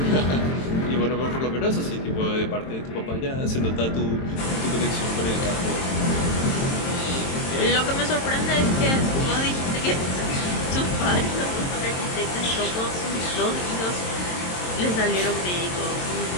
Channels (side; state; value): right; late; 22 ms